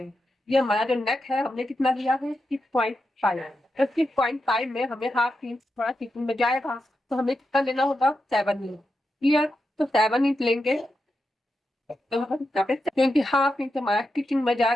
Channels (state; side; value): normal; both; correlation 0.87